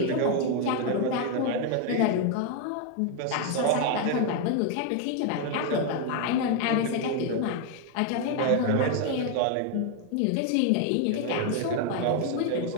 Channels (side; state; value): both; different; correlation 0.01